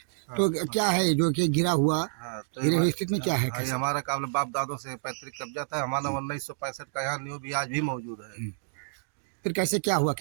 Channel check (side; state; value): left; silent; digital silence